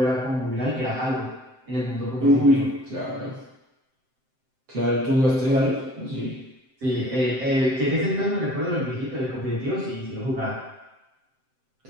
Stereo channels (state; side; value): late; left; 7.7 ms